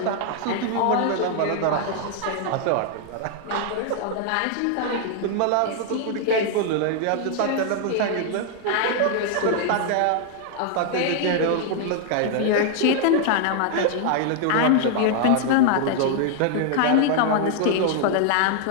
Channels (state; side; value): different; both; correlation 0.00